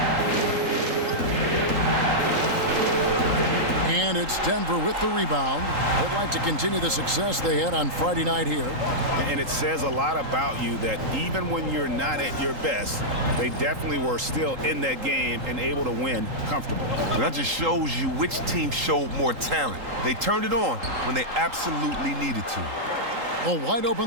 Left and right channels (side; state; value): left; late; 3.8 ms